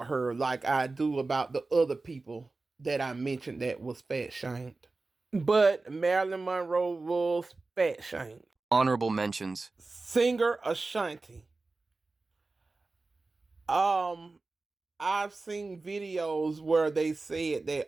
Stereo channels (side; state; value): left; quieter; 3.5 dB